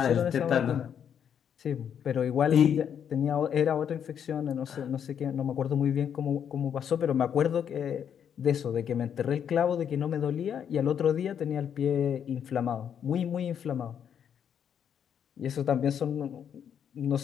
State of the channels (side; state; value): right; quieter; 8.4 dB